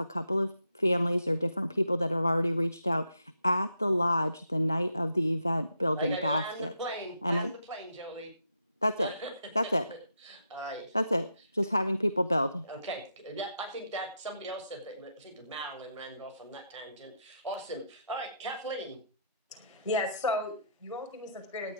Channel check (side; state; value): both; inverted; correlation -0.79